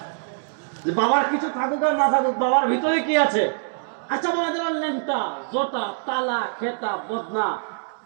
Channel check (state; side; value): silent; left; digital silence